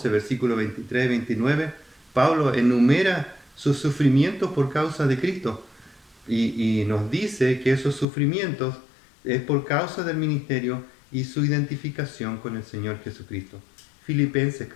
versículo 23 y 29, Pablo enumera sus sufrimientos por causa de Cristo y nos dice que esos sufrimientos es por causa del ministerio y su identificación con el Señor Jesucristo. Filipenses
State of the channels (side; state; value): right; drops out; at 8.1 s